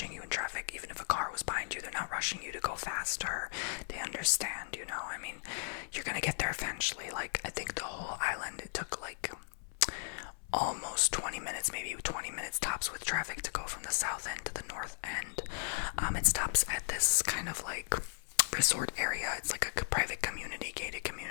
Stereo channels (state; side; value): silent; right; 54 dB below the other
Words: you in traffic. Even if a car was behind you, they're not rushing you to go faster. They understand, you know. I mean, you're gonna get there eventually. Like I think the whole island, it took like almost 20 minutes, maybe 20 minutes tops with traffic to go from the south end to the north end. It stops at this kind of like resort area. It's like a private community, gated